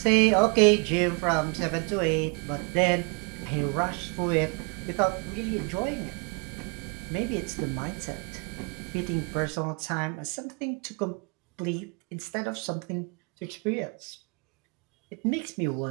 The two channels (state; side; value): quieter; left; 33.1 dB